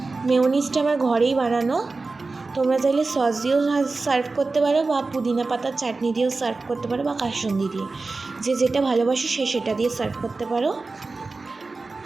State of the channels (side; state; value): left; quieter; 3.7 dB